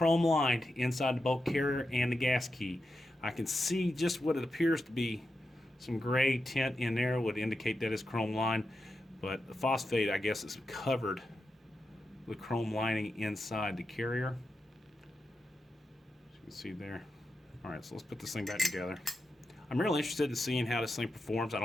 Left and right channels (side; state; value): both; normal; correlation 0.88